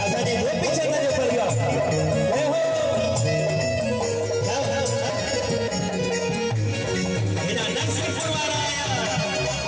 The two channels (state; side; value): identical; both; correlation 1.00